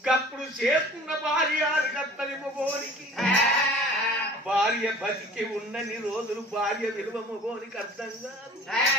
గప్పుడు చేసుకున్న భార్య కత్తని మొగోనికి భార్య బతికి ఉన్నన్ని రోజులు భార్య విలువ మొగోనికి అర్థం కాదు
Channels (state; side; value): normal; both; correlation 0.46